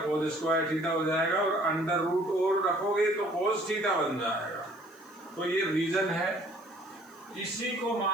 square theta हो जाएगा और अंडर रूट और रखोगे तो कोस थीटा बन जाएगा। तो ये रीजन है। इसी को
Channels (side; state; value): right; noise; hiss, 29 dB below the sound